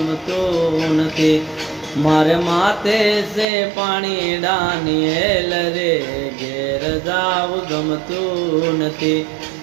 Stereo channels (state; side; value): drops out; left; at 3.5 s